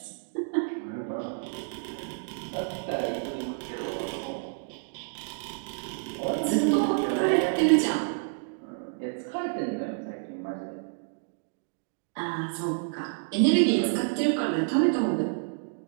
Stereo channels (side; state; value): left; silent; digital silence